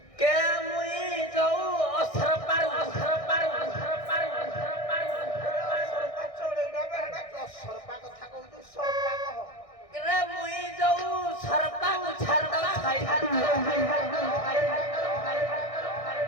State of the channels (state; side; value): late; right; 1.6 ms